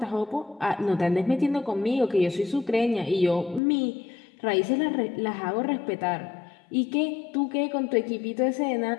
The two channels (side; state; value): right; drops out; at 3.6 s